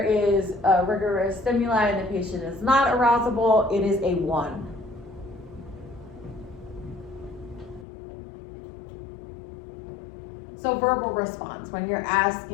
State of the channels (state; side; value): drops out; right; at 7.9 s